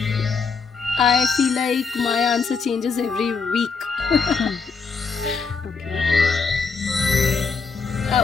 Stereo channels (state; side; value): quieter; right; 5.1 dB